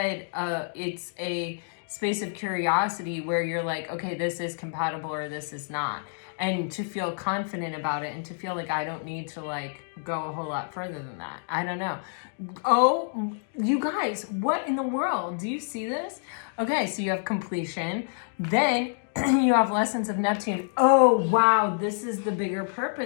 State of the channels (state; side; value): silent; right; digital silence